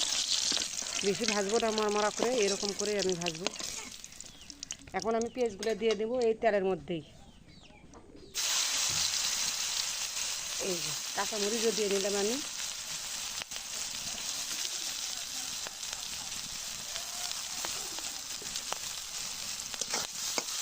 বেশি ভাজবো না, মরমরা করে এরকম করে আমি ভাজবো। এখন আমি পেঁয়াজগুলো দিয়ে দেবো এই তেলের মধ্যেই। এই যে কাঁচামরিচও দিয়ে নিলাম আমি।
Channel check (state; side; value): identical; both; correlation 1.00